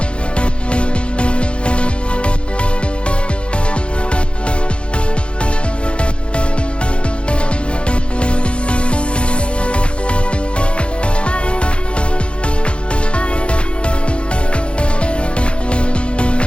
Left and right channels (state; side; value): late; right; 0.057 ms